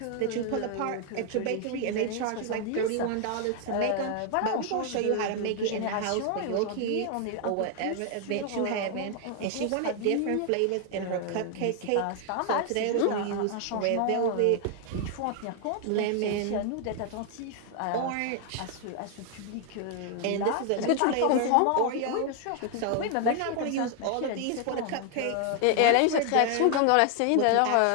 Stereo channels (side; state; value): both; different; correlation 0.00